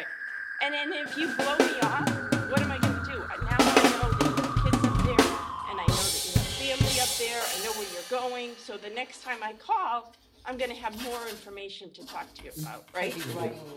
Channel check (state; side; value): identical; both; correlation 1.00